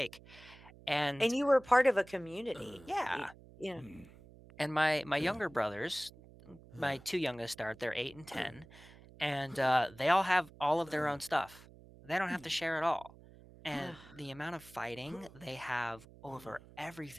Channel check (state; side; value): noise; right; hum, 21 dB below the sound